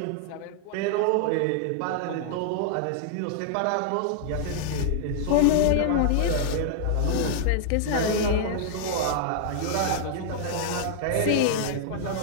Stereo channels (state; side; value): different; both; correlation -0.01